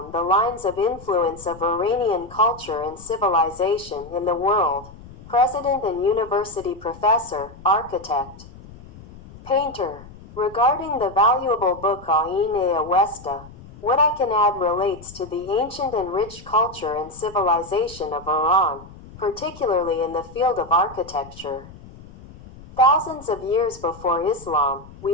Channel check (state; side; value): noise; left; rumble, 19 dB below the sound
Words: The Lines of Influence of Iranian Culture and Civilization in the World, President and University Professor, Architect, Painter. Regarding the valuable book Années Awesta, what I can add relates to the ancient and rich culture and civilization of Iran, particularly in the field of architecture. Thousands of years before Islam,